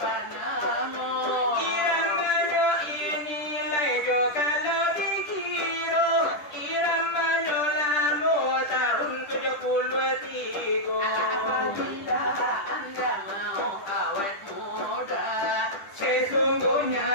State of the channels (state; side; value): late; right; 10 ms